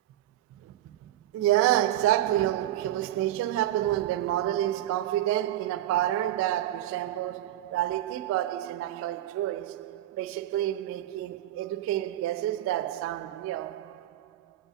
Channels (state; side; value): quieter; left; 13.3 dB